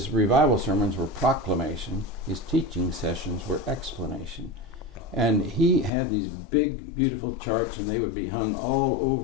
revival sermons were proclamation. His teaching sessions were explanation. And he had these big, beautiful charts, and they would be hung all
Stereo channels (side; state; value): right; drops out; at 5.9 s